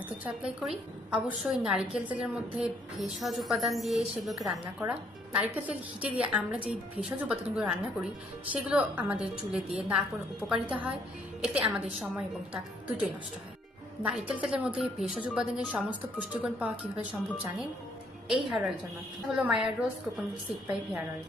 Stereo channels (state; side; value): normal; both; correlation 0.68